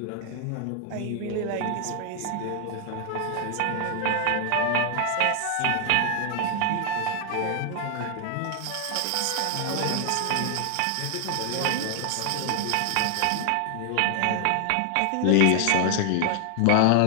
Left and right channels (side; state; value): both; different; correlation 0.00